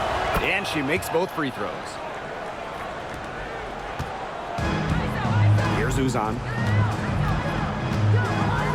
And she makes both free throws. Here's Uzan.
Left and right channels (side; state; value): both; identical; correlation 1.00